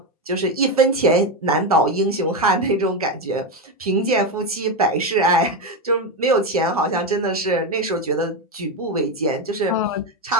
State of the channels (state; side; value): normal; both; correlation 0.12